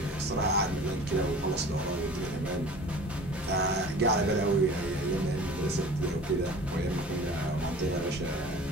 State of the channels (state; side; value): normal; both; correlation 0.42